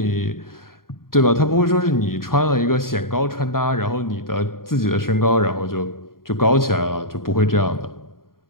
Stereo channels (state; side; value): late; right; 0.92 ms